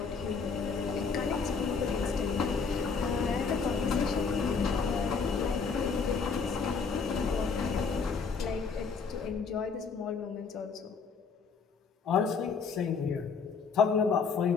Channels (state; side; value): quieter; right; 5.3 dB